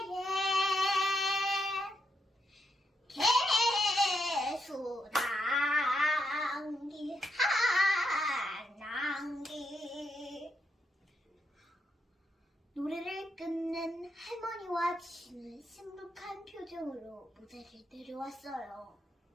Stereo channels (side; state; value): both; normal; correlation 0.81